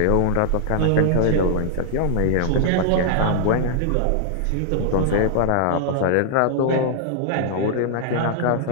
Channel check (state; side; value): different; both; correlation -0.01